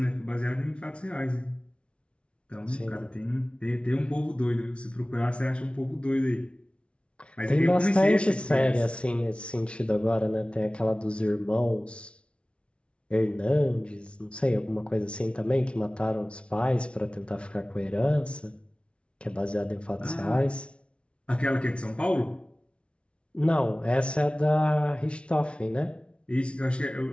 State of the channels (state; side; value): late; right; 0.059 ms